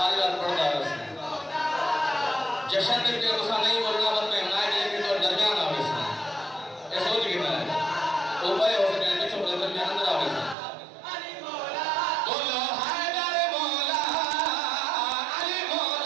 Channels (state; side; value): drops out; left; at 10.6 s